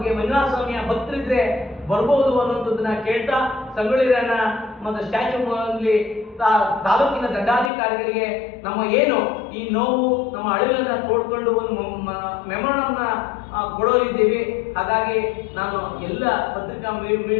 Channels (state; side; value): drops out; right; at 7.7 s